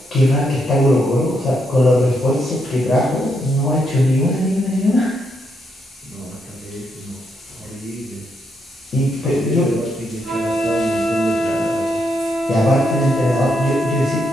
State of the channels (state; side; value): normal; both; correlation 0.79